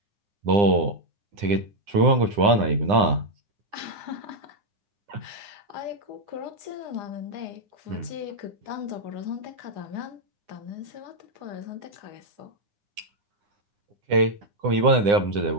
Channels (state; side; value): late; left; 9.8 ms